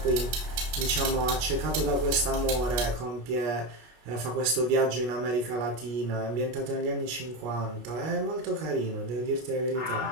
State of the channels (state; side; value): late; left; 24 ms